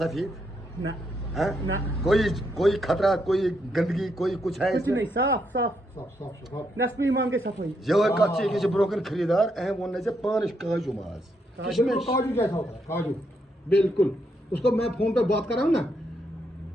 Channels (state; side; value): normal; both; correlation 0.78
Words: ना है ना कोई खतरा, कोई गंदगी, कोई कुछ है कुछ इसमें? नहीं, साफ साफ नस्बी इमाम के सफाई ये कच्ची किसी ब्रोकन खरीदार अहम वन से पानिश काजू माज काजू जैसा होता है, काजू बिल्कुल। उसको मैं फोन पे बात कर रहा हूँ ना,